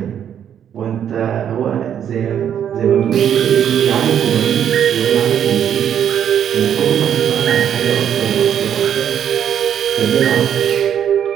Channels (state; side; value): quieter; left; 9.2 dB